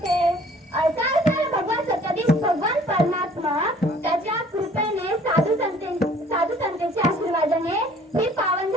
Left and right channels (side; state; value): both; normal; correlation 0.54